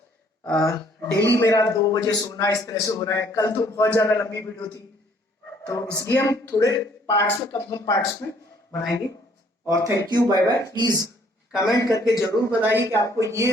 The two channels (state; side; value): normal; both; correlation 0.62